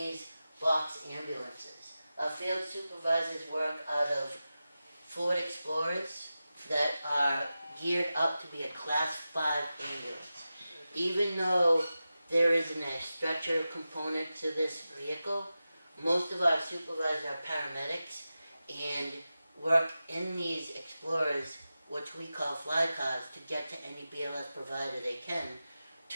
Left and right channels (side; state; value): both; inverted; correlation -0.93